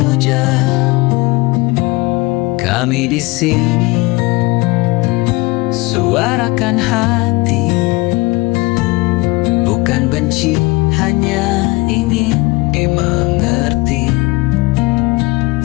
Kami di sini suarakan hati, bukan benci, hanya ingin dimengerti.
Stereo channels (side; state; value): right; quieter; 23.0 dB